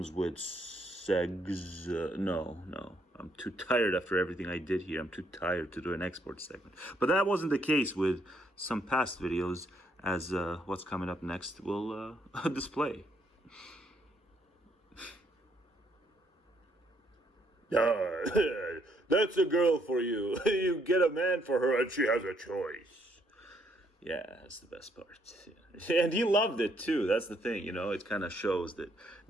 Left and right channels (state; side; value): normal; both; correlation 0.71